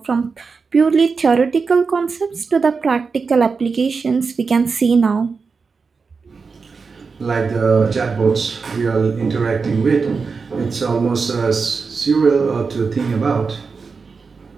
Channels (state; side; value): quieter; left; 4.9 dB